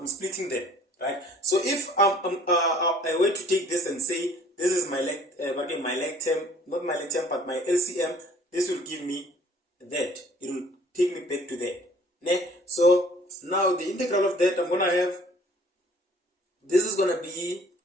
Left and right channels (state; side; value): normal; both; correlation 0.54